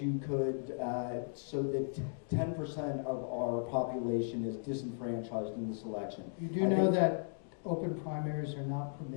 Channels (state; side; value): silent; right; digital silence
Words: you could, so that 10% of our population is disenfranchised in this election. You do I know think- that open primaries are not